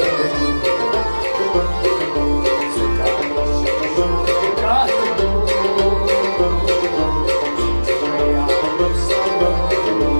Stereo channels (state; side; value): inverted; both; correlation -1.00